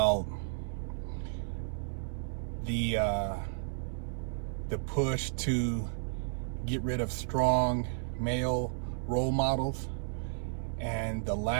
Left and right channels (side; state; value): left; silent; 56 dB below the other